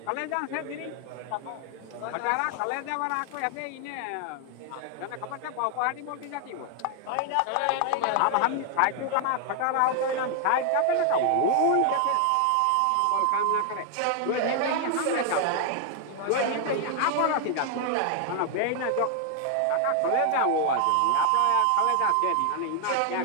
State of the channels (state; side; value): different; both; correlation 0.00